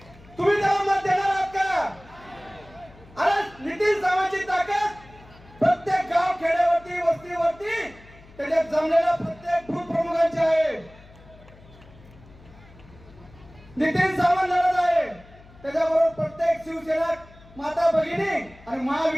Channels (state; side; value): noise; left; hum, 23 dB below the sound